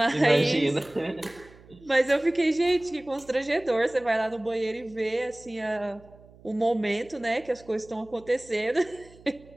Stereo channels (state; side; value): noise; right; hum, 24 dB below the sound